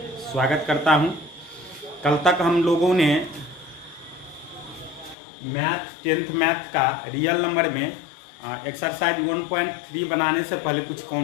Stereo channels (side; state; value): right; drops out; at 5.2 s